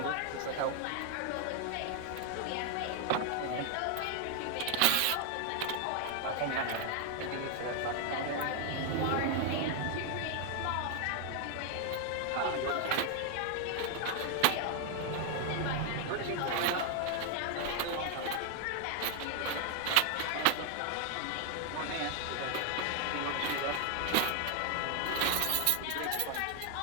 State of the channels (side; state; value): both; different; correlation 0.00